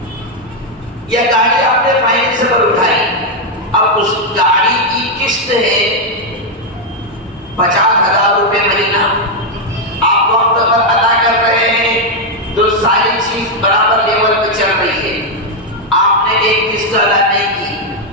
یا گاڑی آپ نے فائنینس پر اٹھائی، اب اس گاڑی کی قسط ہے 50,000 روپے مہینہ، آپ وقت پر ادا کر رہے ہیں تو ساری چیز برابر لیول پہ چل رہی ہے، آپ نے ایک قسط ادا نہیں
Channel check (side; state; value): both; normal; correlation 0.01